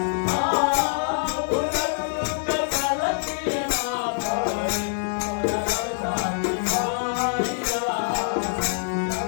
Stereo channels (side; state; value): right; silent; digital silence